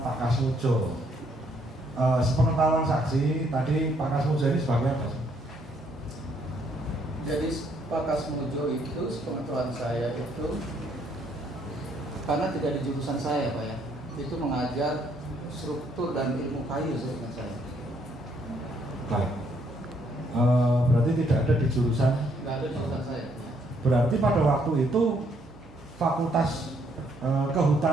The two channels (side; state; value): both; normal; correlation 0.69